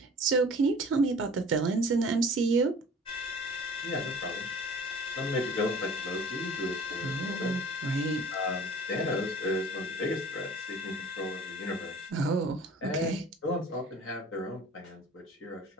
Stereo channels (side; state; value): both; normal; correlation 0.46